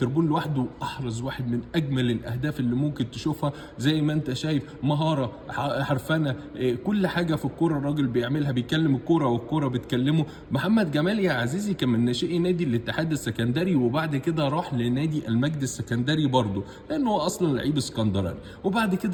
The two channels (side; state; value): both; identical; correlation 1.00